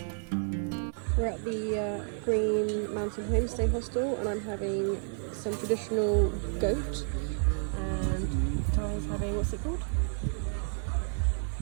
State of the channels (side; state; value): left; silent; 57 dB below the other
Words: We're at the Green Mountain Homestay Hostel and I'm having some traditional goat and Ty is having, what's it called?